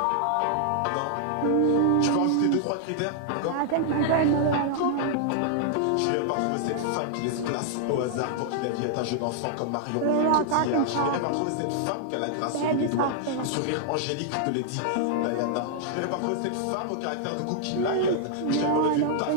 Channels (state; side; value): different; both; correlation -0.01